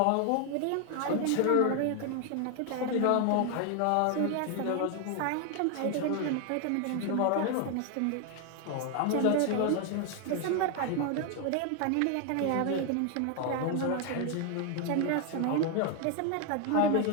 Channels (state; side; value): different; both; correlation 0.01